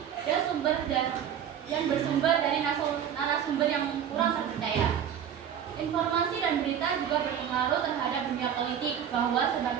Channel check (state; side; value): quieter; left; 9.0 dB